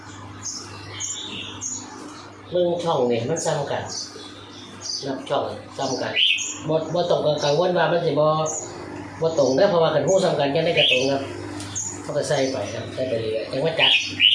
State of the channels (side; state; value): both; identical; correlation 1.00